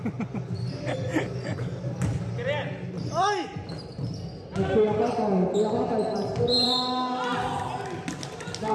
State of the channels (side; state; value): both; identical; correlation 1.00